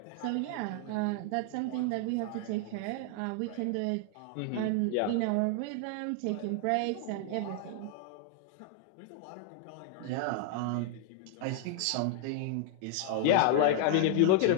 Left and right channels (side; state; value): both; different; correlation 0.00